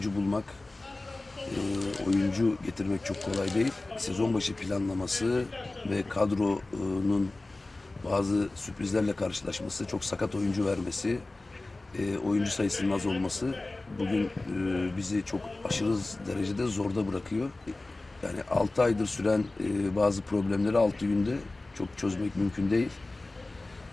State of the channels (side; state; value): right; quieter; 3.0 dB